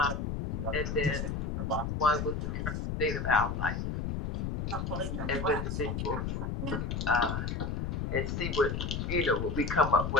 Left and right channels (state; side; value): noise; left; rumble, 2 dB below the sound